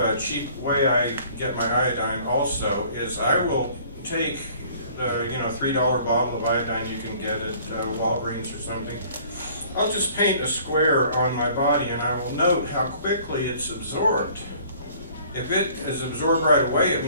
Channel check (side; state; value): both; inverted; correlation -0.54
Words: cheap way I get my iodine also, is I will take the $3 bottle of iodine you can get at Walgreens or something. I'll just paint a square on my body, and I will note how quickly it's absorbed. If it is absorbed right away, it